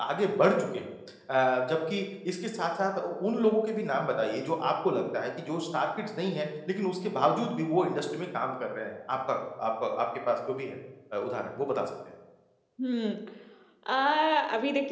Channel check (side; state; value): both; identical; correlation 1.00